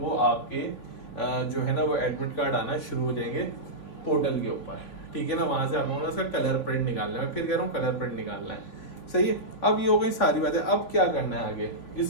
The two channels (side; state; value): right; late; 3.8 ms